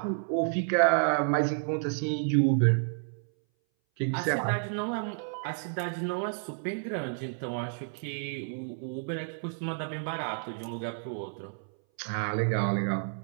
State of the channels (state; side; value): silent; left; 58 dB below the other